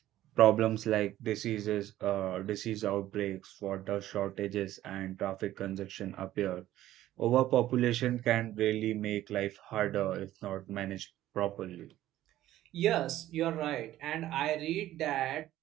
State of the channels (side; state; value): left; quieter; 14.0 dB